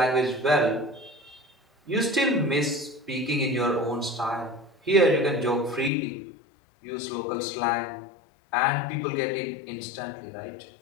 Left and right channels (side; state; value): right; drops out; at 5.9 s